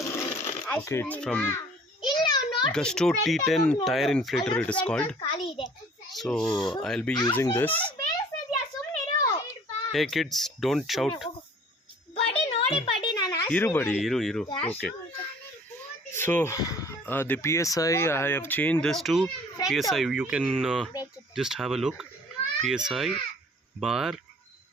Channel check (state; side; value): normal; both; correlation 0.51